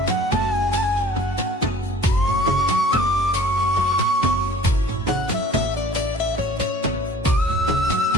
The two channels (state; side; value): normal; both; correlation 0.49